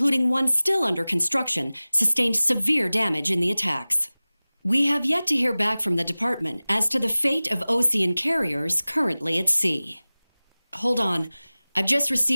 one still under construction, sustained severe damage in the attacks. We have yet to hear back from the department as to the fate of Osean carriers currently at sea. Hold on, I've just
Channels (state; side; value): inverted; both; correlation -0.99